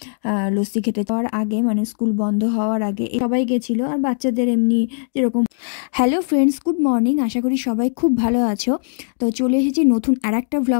লস্যি খেতে যাওয়ার আগে মানে স্কুল বন্ধ হওয়ার আগে সবাই গেছিলো। আর বাচ্চাদের এমনি যেরকম। Hello friends, good morning. আশা করি সবাই খুব ভালো আছো। তো চলে এসেছি নতুন আরেকটা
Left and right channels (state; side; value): silent; right; digital silence